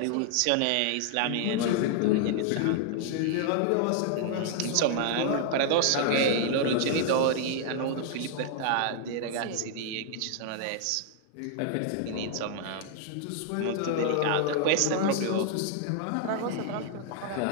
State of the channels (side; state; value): both; different; correlation 0.00